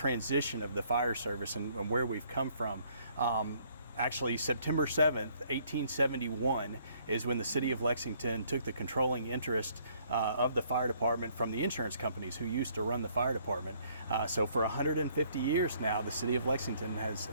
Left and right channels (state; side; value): inverted; both; correlation -0.64